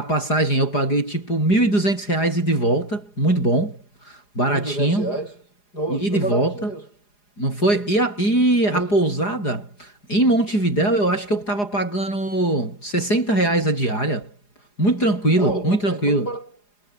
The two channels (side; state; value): right; late; 4.9 ms